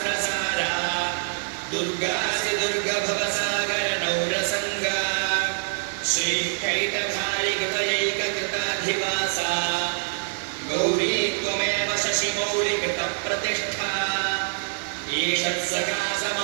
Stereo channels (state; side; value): silent; left; digital silence